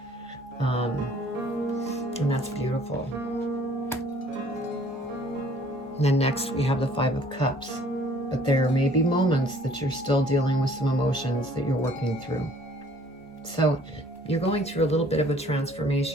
And that's beautiful. And then next we have the Five of Cups. But there may be moments that you're still dealing with some emotions that you're working through. So you're going through a little bit of a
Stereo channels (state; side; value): normal; both; correlation 0.56